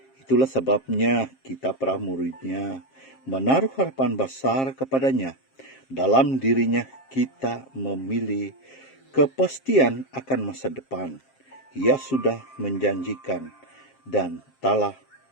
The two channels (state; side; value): late; right; 7.5 ms